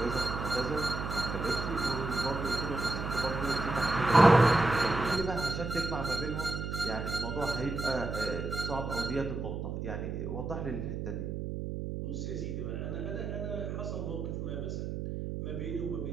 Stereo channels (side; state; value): right; noise; hum, 4 dB below the sound